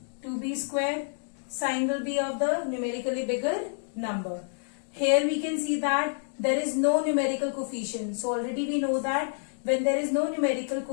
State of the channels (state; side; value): silent; right; digital silence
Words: 2b square. Sign will be of the numerically bigger number. Here we can see that there is no numerical coefficient. So already we know that when there is no numerical